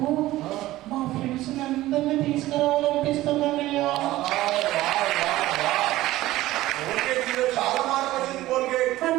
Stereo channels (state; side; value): quieter; left; 16.3 dB